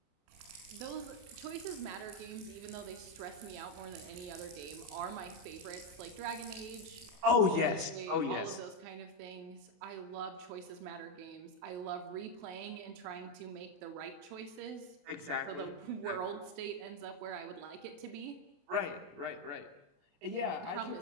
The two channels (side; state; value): left; late; 28 ms